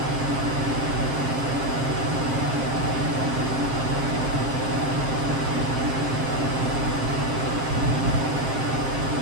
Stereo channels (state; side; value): late; left; 7.5 ms